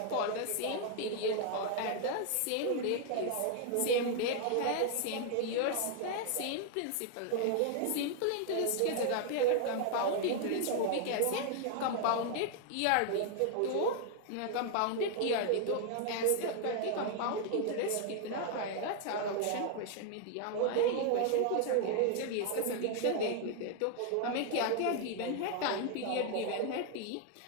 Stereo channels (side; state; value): both; different; correlation 0.00